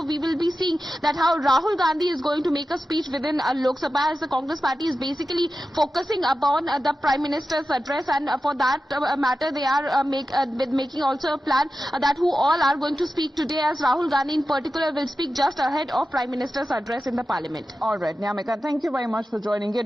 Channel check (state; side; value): normal; both; correlation 0.92